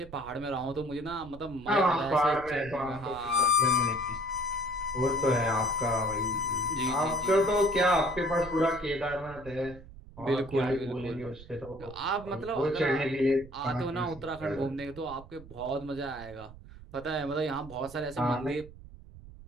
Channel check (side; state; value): right; noise; rumble, 18 dB below the sound